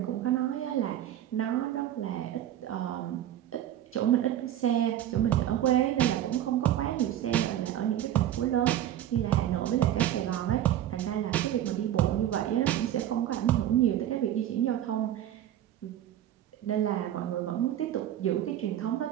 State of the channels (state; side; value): quieter; left; 11.8 dB